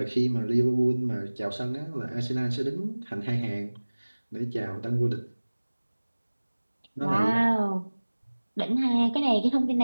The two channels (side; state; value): both; inverted; correlation -1.00